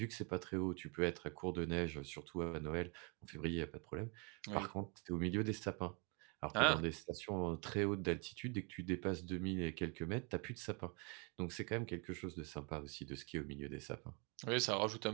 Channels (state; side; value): quieter; left; 33.8 dB